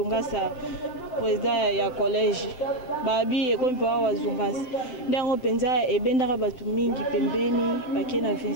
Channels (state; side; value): late; right; 7.7 ms